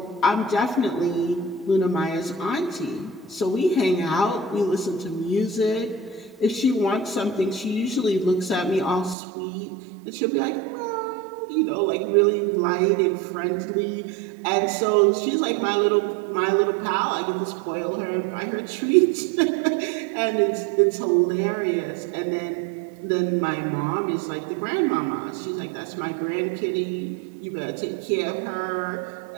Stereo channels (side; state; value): left; drops out; at 9.2 s